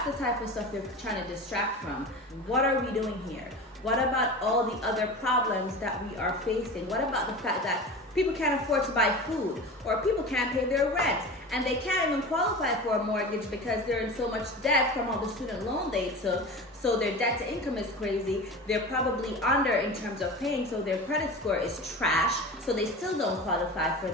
the type of stuff they're trying to distract from. What are we doing here? What about all the other problems that we are facing? What about the fact that people can't afford to buy food, or people can't pay their rent, and they can't even qualify for a mortgage because they're in so much debt from all the student loan they took. So their debt to income is crazy. They're probably under in terms of paying, so their credit score is trash, so they still don't qualify for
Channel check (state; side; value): normal; both; correlation 0.31